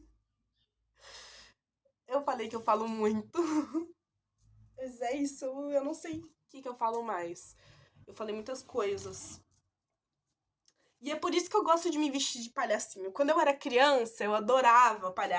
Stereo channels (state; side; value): identical; both; correlation 1.00